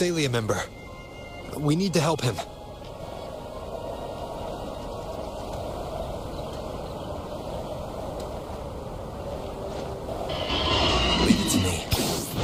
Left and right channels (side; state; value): both; identical; correlation 1.00